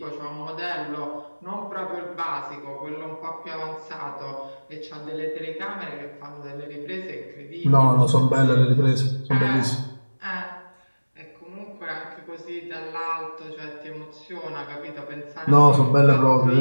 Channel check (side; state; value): both; inverted; correlation -1.00